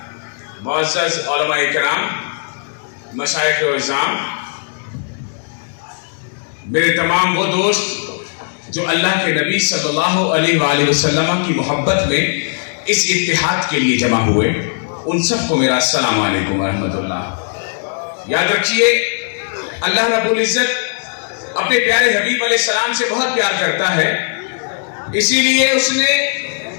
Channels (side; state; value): right; silent; digital silence